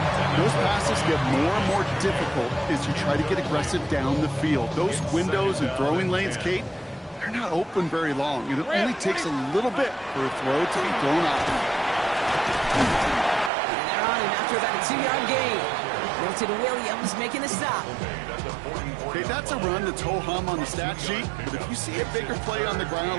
Those passes get more and more difficult as you try to get aggressive down the field. Those windows and throwing lanes, Kate, they're not open very long. It only takes a little bit for a throw to be thrown out. And they're on him after about a 2-yard gain. Milton Williams making the stop. Okay, that's a run that's ho-hum on the stat sheet, but if you see a bigger play on the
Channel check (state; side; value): drops out; left; at 13.5 s